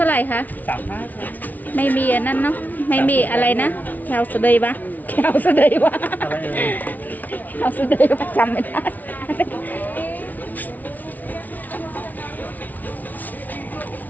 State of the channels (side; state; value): right; late; 0.078 ms